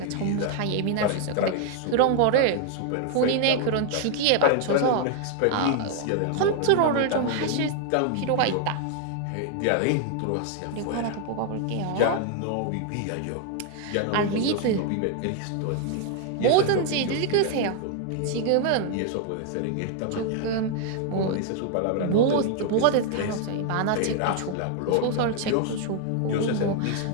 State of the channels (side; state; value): both; different; correlation 0.00